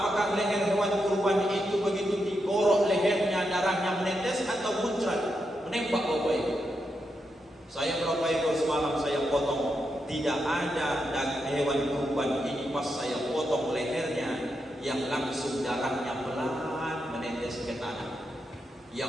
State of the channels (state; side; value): normal; both; correlation 0.84